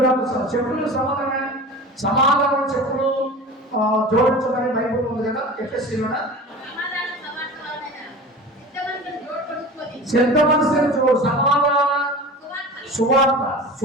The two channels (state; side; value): normal; both; correlation 0.36